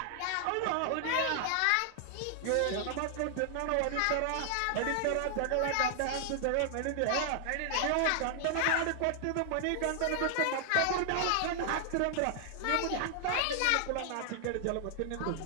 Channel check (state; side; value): different; both; correlation 0.00